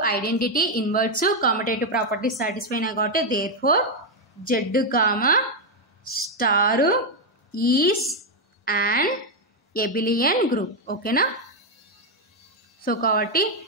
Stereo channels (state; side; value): normal; both; correlation 0.03